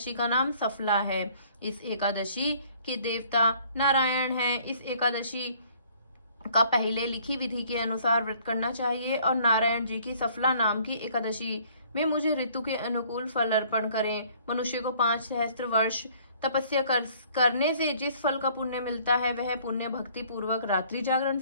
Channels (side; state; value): both; inverted; correlation -0.58